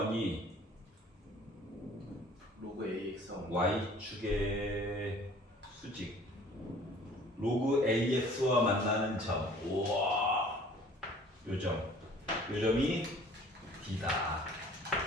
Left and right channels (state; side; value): normal; both; correlation 0.51